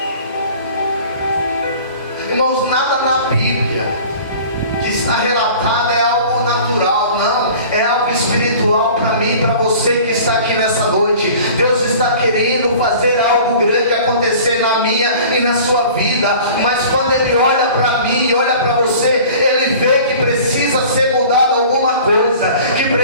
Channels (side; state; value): both; inverted; correlation -0.44